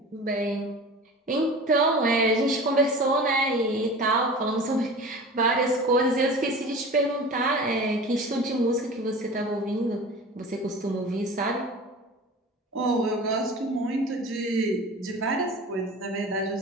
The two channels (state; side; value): normal; both; correlation 0.37